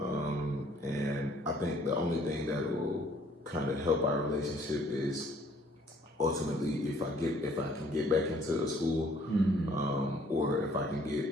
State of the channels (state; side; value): normal; both; correlation 0.60